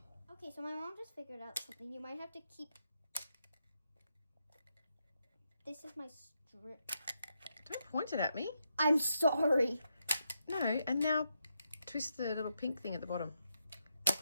Okay, so my mom just figured out something. You might have to keep. This is my strip. Don't point it at me. I'm sorry. No, and now twist the little pink thing at the bottom.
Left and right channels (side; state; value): both; inverted; correlation -0.82